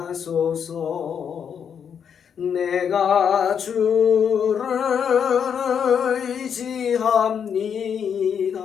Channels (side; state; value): right; quieter; 7.6 dB